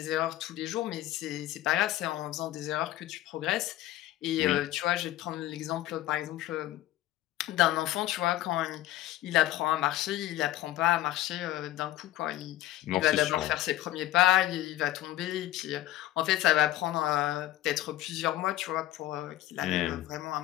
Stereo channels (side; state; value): right; quieter; 14.7 dB